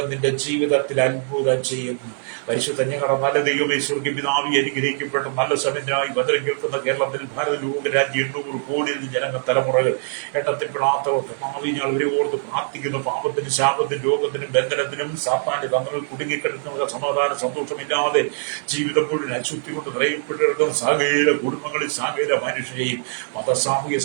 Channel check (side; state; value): left; silent; digital silence